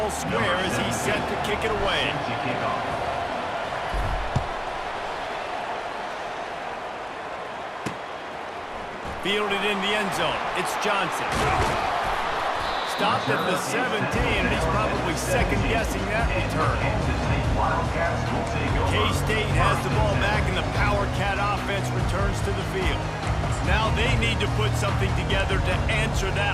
square as he's set to kick it away. Fielded in the end zone. It's Johnson. Stopped at the 17, and he's probably second-guessing that return. K-State has the ball back, and the Power Cat offense returns to the field. Now they need to put something together to answer that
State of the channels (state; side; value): identical; both; correlation 1.00